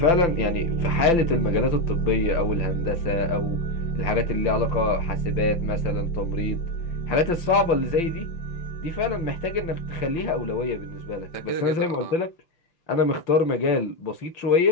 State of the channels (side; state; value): right; late; 5.8 ms